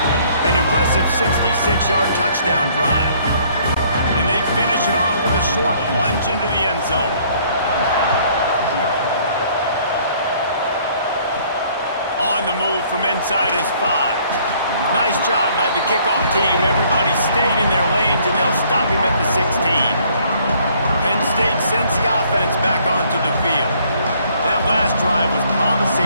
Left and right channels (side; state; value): both; inverted; correlation -0.61